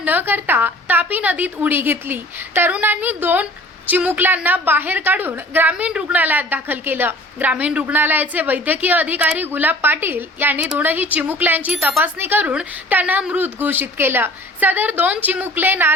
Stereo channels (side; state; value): both; normal; correlation 0.47